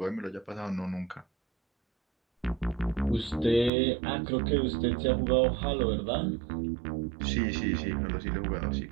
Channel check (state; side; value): drops out; left; at 3.7 s